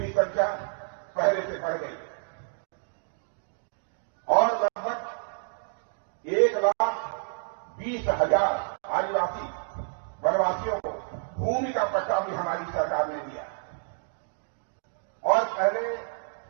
संख्या पहले से बढ़ गई है और लगभग 1,20,000 आदिवासी वनवासियों को भूमि का पट्टा भी हमारी सरकार ने दिया। और पहले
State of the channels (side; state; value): left; silent; digital silence